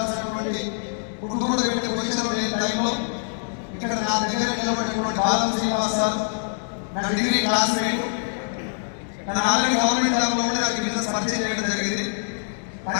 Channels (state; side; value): silent; right; digital silence